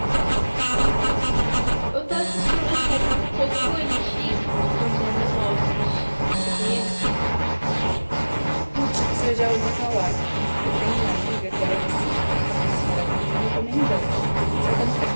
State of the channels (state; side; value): inverted; both; correlation -1.00